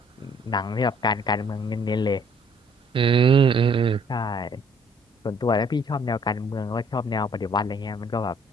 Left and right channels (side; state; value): both; normal; correlation 0.61